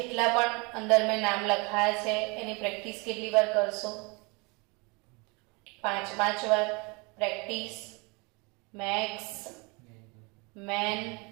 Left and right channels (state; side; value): quieter; left; 29.1 dB